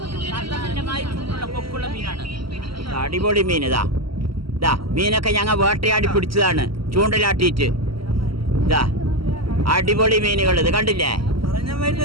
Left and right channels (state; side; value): late; left; 0.75 ms